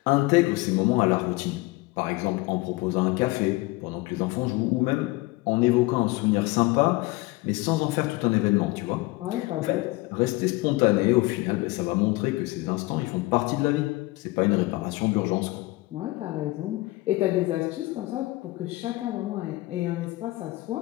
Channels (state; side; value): quieter; right; 21.2 dB